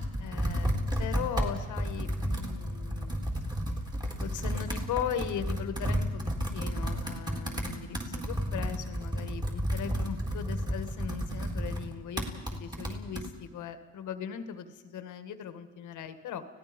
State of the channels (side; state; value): both; normal; correlation 0.69